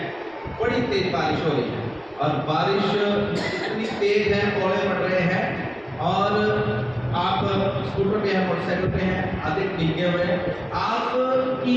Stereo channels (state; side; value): noise; right; rumble, 28 dB below the sound